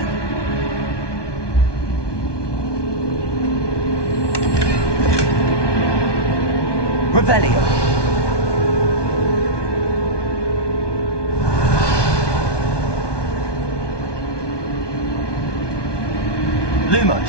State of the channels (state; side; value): late; right; 1.2 ms